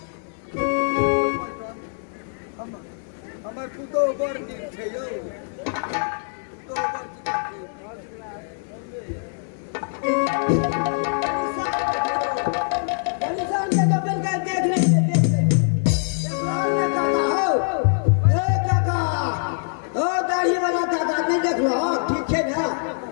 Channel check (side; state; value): right; silent; digital silence